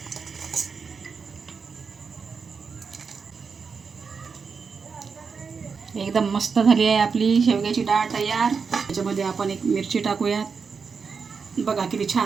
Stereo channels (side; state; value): left; quieter; 5.5 dB